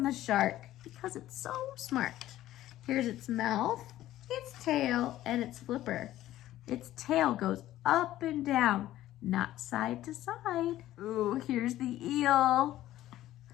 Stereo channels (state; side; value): quieter; right; 14.2 dB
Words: the shark because it's so smart. Here's its mouth, its tail, and its flipper. Its tail goes up and down, not side to side. Ooh, here's the eel.